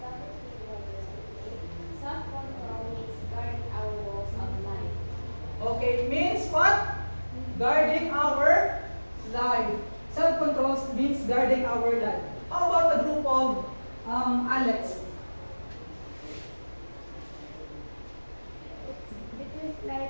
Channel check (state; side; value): inverted; both; correlation -1.00